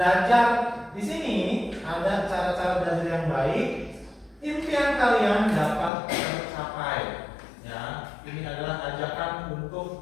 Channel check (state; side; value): drops out; right; at 5.9 s